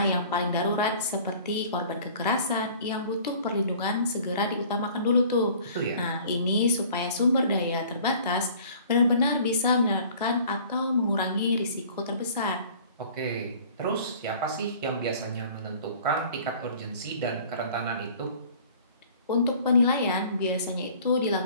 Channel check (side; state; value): both; inverted; correlation -0.49